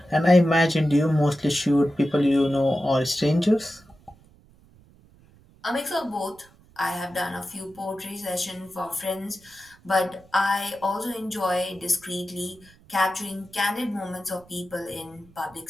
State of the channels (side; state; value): right; noise; rumble, 28 dB below the sound